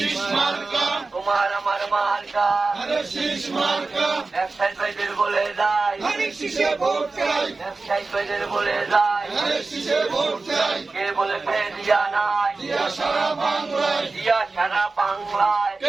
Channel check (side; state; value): left; quieter; 3.8 dB